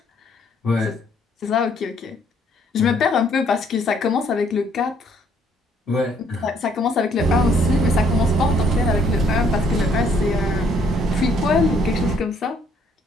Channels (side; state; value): both; normal; correlation 0.65